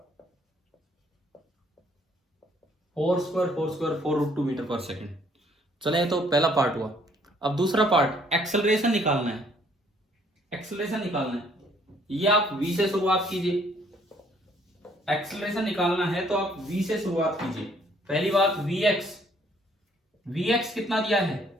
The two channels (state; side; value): normal; both; correlation 0.63